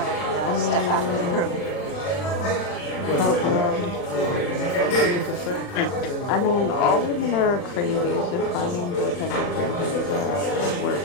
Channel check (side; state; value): right; late; 40 ms